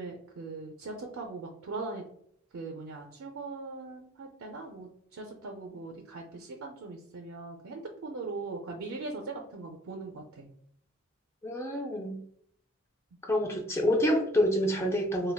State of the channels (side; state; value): both; normal; correlation 0.55